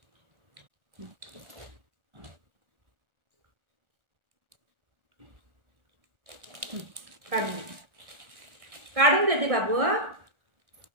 काढून देते बाबू.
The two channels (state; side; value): late; left; 1.4 ms